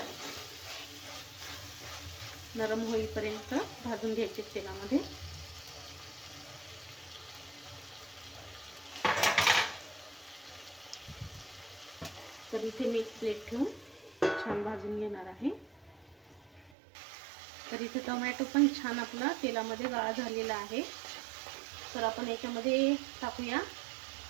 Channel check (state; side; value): drops out; left; at 16.7 s